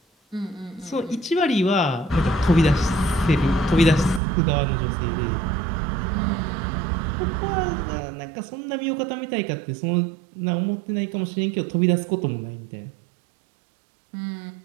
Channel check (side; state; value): left; drops out; at 4.2 s